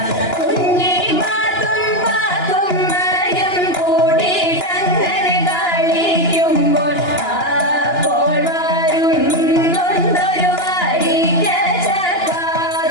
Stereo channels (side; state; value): right; late; 2.9 ms